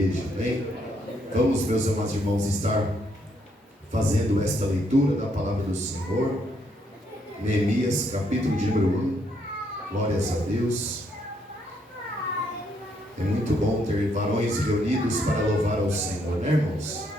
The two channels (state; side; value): normal; both; correlation 0.73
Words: amém. Vamos, meus amados irmãos, estar fazendo esta leitura da palavra do Senhor. Neemias, capítulo de número 1. Glórias a Deus. É muito bom ter varões reunidos para louvar ao Senhor, né, irmãos?